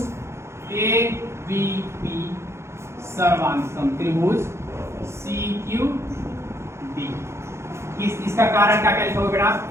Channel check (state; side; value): late; left; 0.13 ms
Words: ए बी पी सर्वांगसम त्रिभुज सी क्यू डी। इसका कारण क्या क्या लिखोगे बेटा